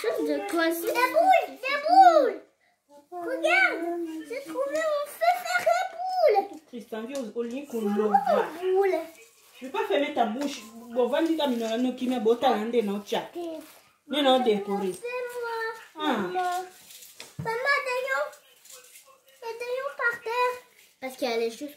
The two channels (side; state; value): both; identical; correlation 1.00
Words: de coincé. Des boules. Regarde, j'ai trouvé mon préféré boule. Tristan, viens au lit qu'on l'ouvre. Boule. Je ne peux pas fermer ta bouche. Bon, va dire à Minolano qui m'a botté à l'un non chat. Mais non décoré. C'est moi. Ah. Maman, d'ailleurs par terre. Parce qu'il y a les choses